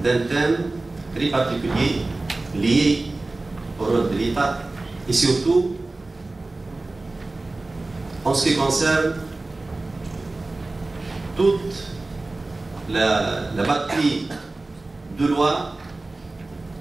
d'un thème très particulier lié au rôle de l'État et surtout en ce qui concerne toute la batterie de lois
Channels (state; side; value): quieter; left; 3.1 dB